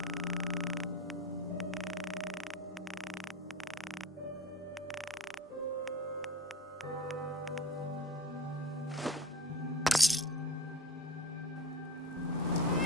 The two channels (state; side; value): normal; both; correlation 0.34